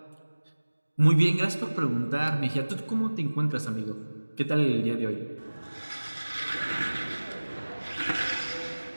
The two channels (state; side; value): inverted; both; correlation -1.00